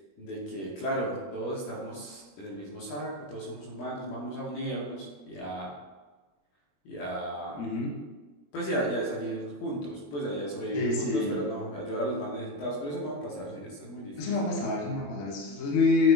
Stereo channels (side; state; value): right; late; 21 ms